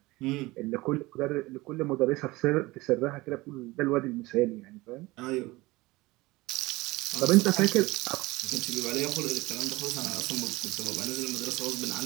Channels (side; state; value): left; quieter; 21.0 dB